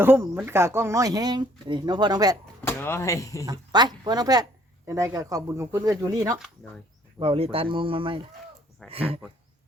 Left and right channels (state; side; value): normal; both; correlation 0.62